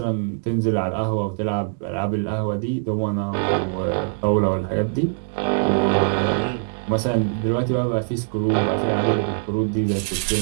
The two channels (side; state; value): left; silent; 62 dB below the other